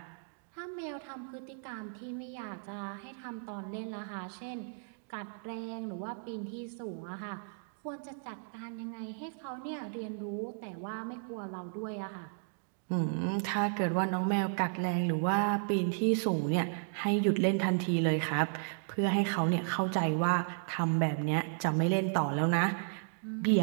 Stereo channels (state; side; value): silent; left; digital silence